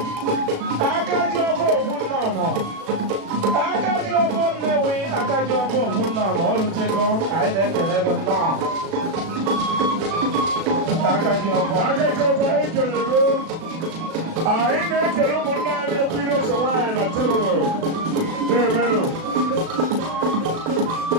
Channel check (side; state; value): left; late; 36 ms